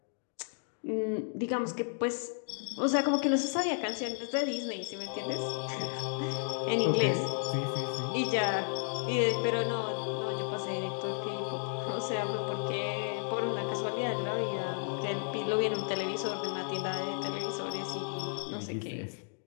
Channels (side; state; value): right; silent; 56 dB below the other